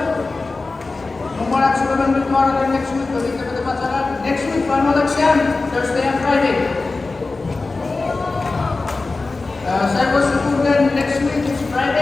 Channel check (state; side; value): quieter; right; 3.6 dB